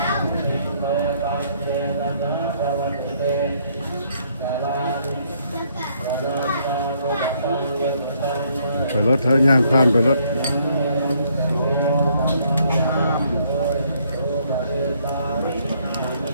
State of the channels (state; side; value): inverted; both; correlation -0.68